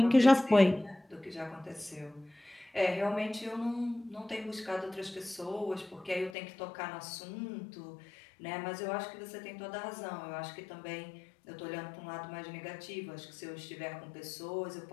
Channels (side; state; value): right; drops out; at 6.4 s